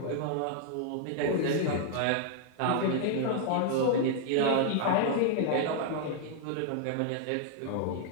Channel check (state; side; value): different; both; correlation 0.00